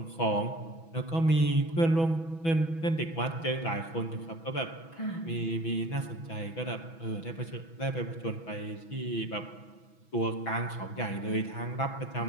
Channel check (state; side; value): late; right; 6.1 ms